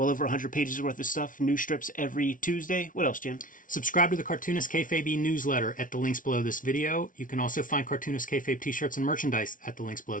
over 100 pages worth of stuff. New strips every Tuesday. What else, Jim? Subscribe to the Cartoonist Kayfabe newsletter at the links below this video. You can also find Cartoonist Kayfabe t-shirts and merchandise at the links below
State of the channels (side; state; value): right; late; 0.38 ms